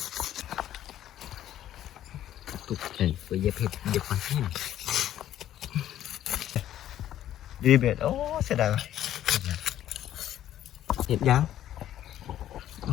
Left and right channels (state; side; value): quieter; right; 12.0 dB